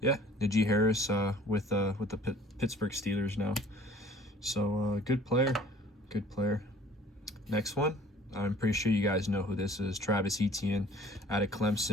yeah, the G. Harris with the Pittsburgh Steelers now. So good player. Next one, I'm pretty sure you guys know who this is. Travis Etienne out of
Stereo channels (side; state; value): both; normal; correlation 0.52